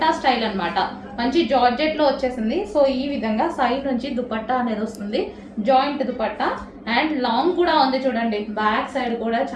స్టైల్ అనమాట. మంచి జార్జెట్లో వచ్చేసింది. సో ఈ విధంగా సైడ్ నుంచి దుపట్టా అనేది వస్తుంది, జాయింట్ దుపట్టా అండ్ లాంగ్ కూడా ఉంది చూడండి. బ్యాక్ సైడ్ కూడా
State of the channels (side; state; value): both; identical; correlation 1.00